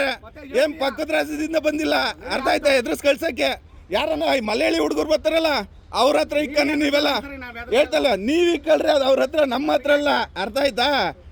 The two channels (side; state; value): both; identical; correlation 1.00